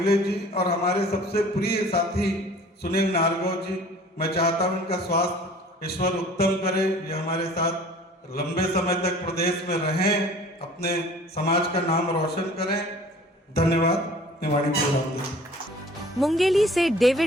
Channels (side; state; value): both; normal; correlation 0.48